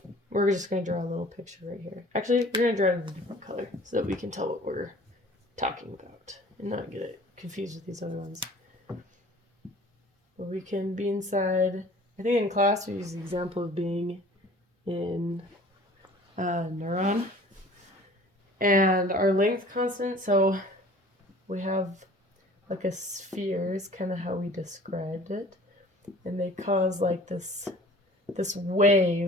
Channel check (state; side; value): normal; both; correlation 0.48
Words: we're just going to draw a little picture right here. Actually, we're going to draw it in a different color so that we can tell what we're talking about and not get it confused with these other ones. But we can be inside, I think in class we use the example of being in a neuron. And our length constant, so we have like a sphere is kind of how we described it. And they cause like this